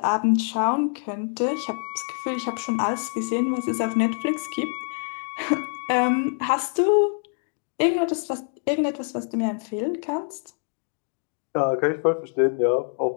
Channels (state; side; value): silent; right; 56 dB below the other